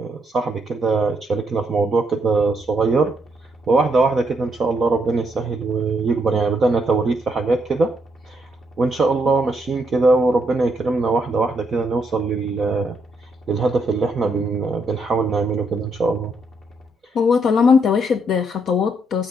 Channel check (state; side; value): normal; both; correlation 0.75